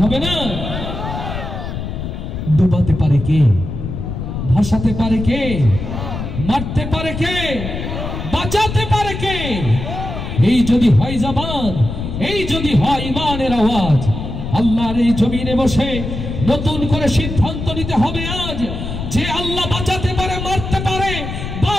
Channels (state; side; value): noise; left; rumble, 6 dB below the sound